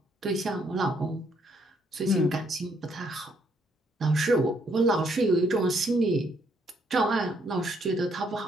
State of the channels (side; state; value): both; normal; correlation 0.70